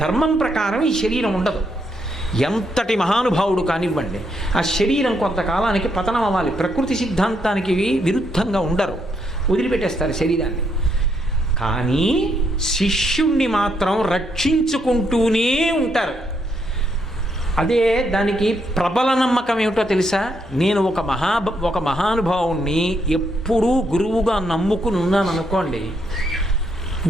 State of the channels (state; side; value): normal; both; correlation 0.76